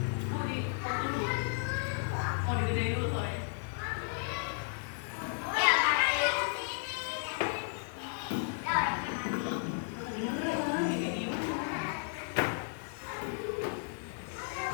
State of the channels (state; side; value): silent; right; 55 dB below the other